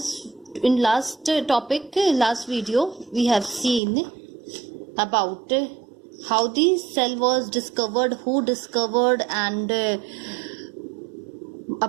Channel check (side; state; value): left; drops out; at 3.8 s